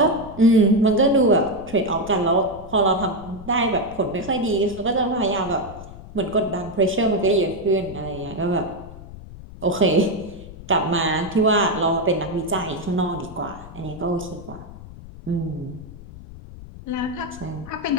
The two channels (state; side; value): noise; left; rumble, 16 dB below the sound